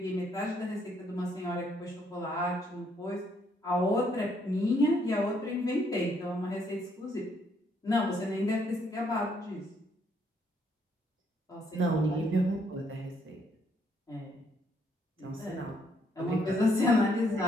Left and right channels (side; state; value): both; normal; correlation 0.70